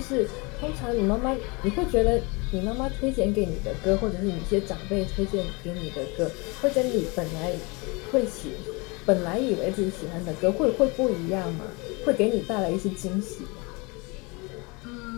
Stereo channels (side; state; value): right; quieter; 28.1 dB